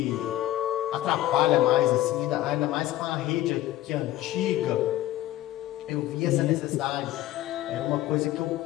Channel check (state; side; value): quieter; right; 14.7 dB